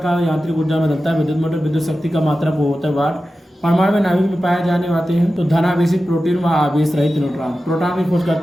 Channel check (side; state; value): both; normal; correlation 0.93